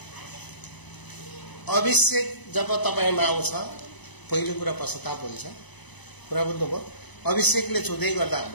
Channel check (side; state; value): right; late; 1.0 ms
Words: अभिषेक जब तपाईँमा आउँछ पहिलो कुरा पश्चाताप हुन्छ। कुरा बुझ्नुभयो? अभिषेकले छुँदै गर्दा